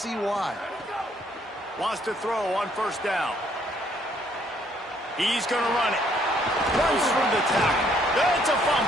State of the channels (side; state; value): both; normal; correlation 0.66